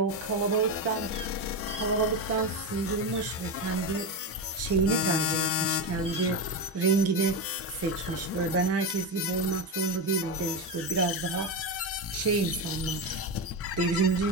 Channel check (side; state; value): both; normal; correlation 0.15